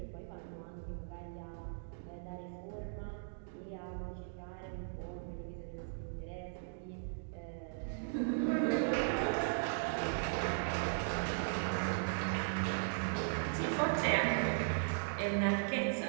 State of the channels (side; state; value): left; silent; digital silence